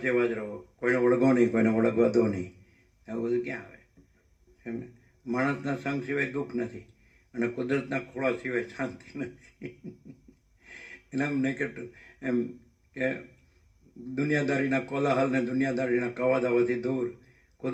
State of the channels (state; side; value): identical; both; correlation 1.00